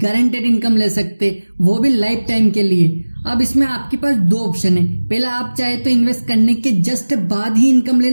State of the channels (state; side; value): inverted; both; correlation -1.00